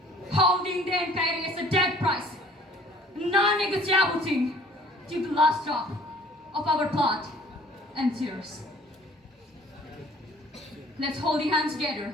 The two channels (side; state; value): both; normal; correlation 0.53